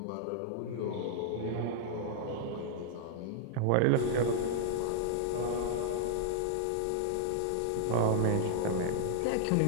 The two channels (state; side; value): different; both; correlation -0.01